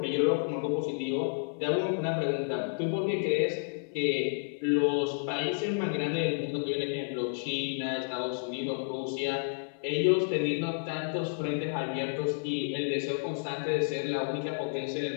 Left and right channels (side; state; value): right; silent; 57 dB below the other